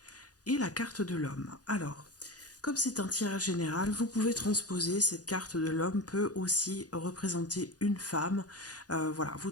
et la carte de l'homme. Alors, comme c'est un tirage général, vous pouvez transposer. Cette carte de l'homme peut aussi représenter une femme. Voilà, vous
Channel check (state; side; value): late; right; 0.68 ms